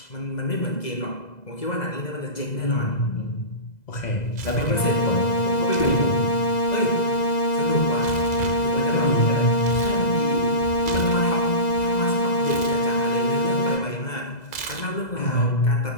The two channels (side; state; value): right; late; 2.0 ms